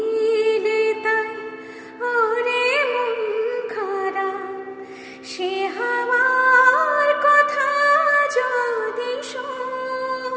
তাই ওরে মন খারাপ সে হাওয়ার কথা যদি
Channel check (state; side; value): identical; both; correlation 1.00